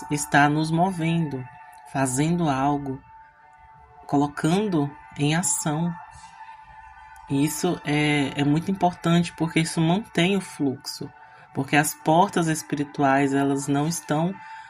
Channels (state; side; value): identical; both; correlation 1.00